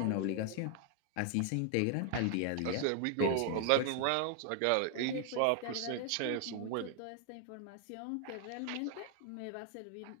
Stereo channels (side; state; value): both; different; correlation 0.00